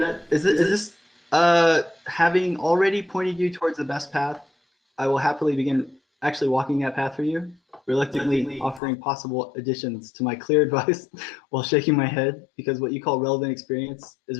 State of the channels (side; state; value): right; drops out; at 8.8 s